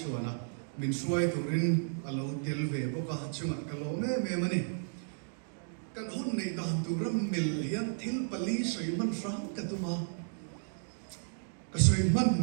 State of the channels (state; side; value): silent; left; digital silence